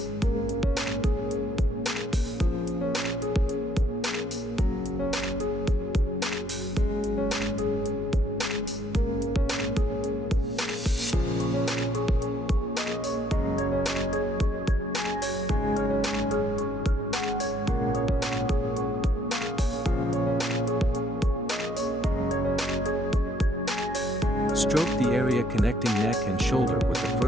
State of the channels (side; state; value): both; normal; correlation 0.65